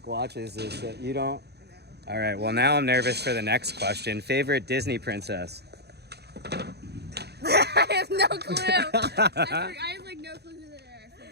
watches this. You don't? All right. Well, now I'm nervous for the next question. Favorite Disney princess? I have no clue. I have like no clue who they are.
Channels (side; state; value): left; late; 0.48 ms